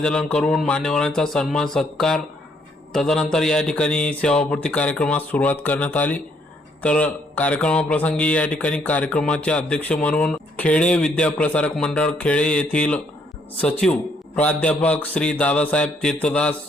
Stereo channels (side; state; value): both; normal; correlation 0.69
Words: करून मान्यवरांचा सन्मान सत्कार, तदनंतर या ठिकाणी सेवापूर्ती कार्यक्रमास सुरुवात करण्यात आली। तर कार्यक्रमाप्रसंगी या ठिकाणी कार्यक्रमाचे अध्यक्ष म्हणून खेडे विद्याप्रसारक मंडळ खेडे येथील सचिव प्राध्यापक श्री दादासाहेब तीर्थदास